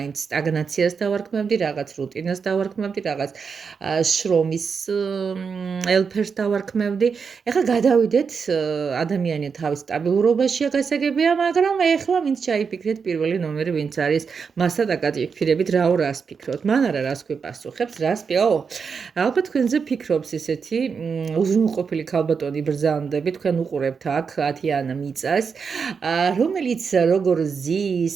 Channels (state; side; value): quieter; left; 5.8 dB